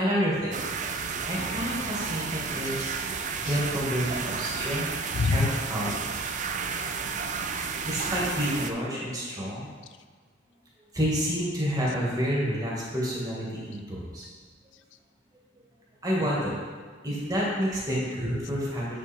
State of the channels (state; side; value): normal; both; correlation 0.53